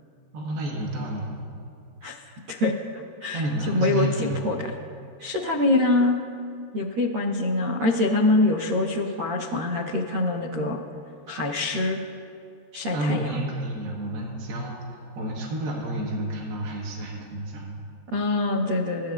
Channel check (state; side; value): late; left; 13 ms